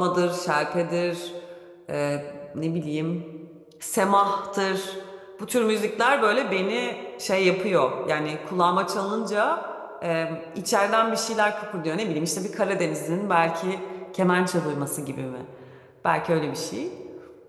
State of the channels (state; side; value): identical; both; correlation 1.00